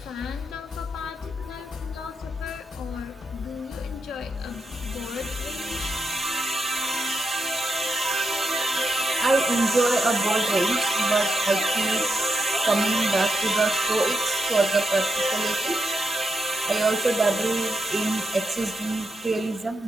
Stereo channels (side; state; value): both; normal; correlation 0.84